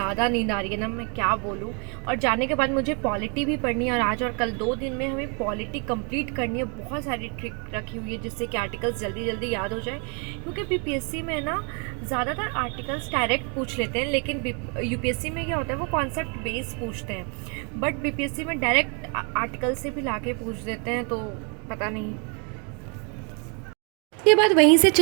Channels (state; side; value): quieter; left; 36.3 dB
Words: नींद आ रही है ना, मैं क्या बोलूँ। और जाने के बाद मुझे पॉलिटी भी पढ़नी है और आज और कल 2 दिन में हमें पॉलिटी कंप्लीट करनी है। बहुत सारी ट्रिक रखी हुई है जिससे कि आर्टिकल्स जल्दी जल्दी याद हो जाए, क्योंकि बीपीएससी में ना ज़्यादातर आर्टिकल्स डायरेक्ट पूछ लेते हैं, लेकिन यूपीएससी में क्या होता है वो कॉन्सेप्ट बेस पूछते हैं। बट बीपीएससी में डायरेक्ट आर्टिकल से भी ला के पूछ देते हैं, तो पता नहीं। उसके बाद वहीं से